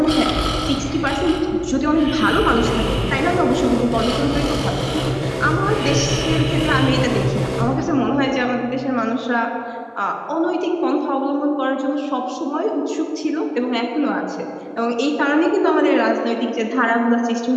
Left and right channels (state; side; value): identical; both; correlation 1.00